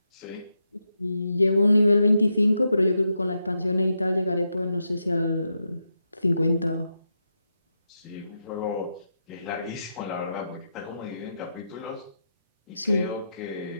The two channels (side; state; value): both; inverted; correlation -0.85